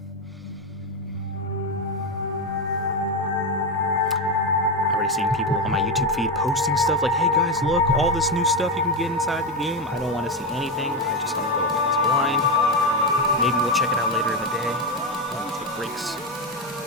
I've already seen people on my YouTube feed posting stuff like, hey guys, look, all this new stuff you can get inside the game. I don't want to see anything. I just want to go into this blind. Maybe we'll check it out later in the day when we take breaks.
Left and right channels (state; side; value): normal; both; correlation 0.12